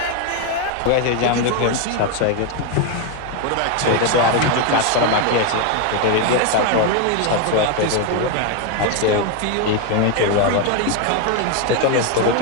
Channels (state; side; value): different; both; correlation 0.01